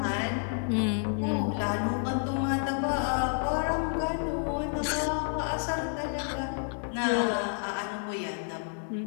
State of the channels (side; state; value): right; silent; 58 dB below the other